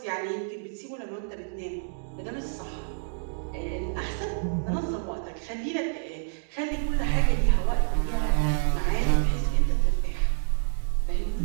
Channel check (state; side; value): silent; left; digital silence